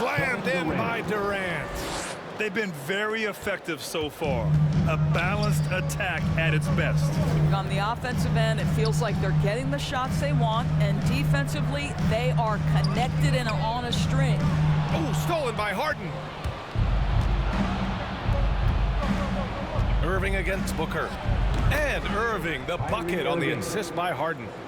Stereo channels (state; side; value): identical; both; correlation 1.00